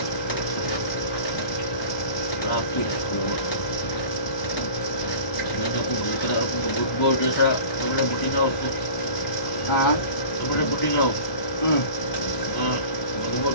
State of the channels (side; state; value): right; late; 1.2 ms